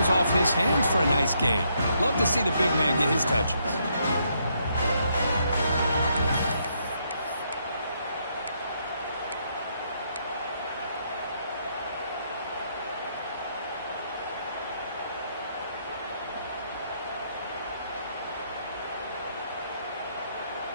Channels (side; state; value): both; inverted; correlation -0.75